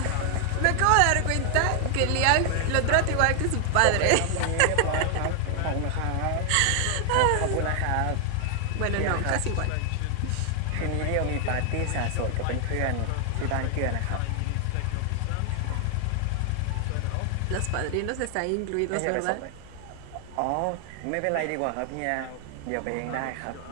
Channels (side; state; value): both; different; correlation 0.00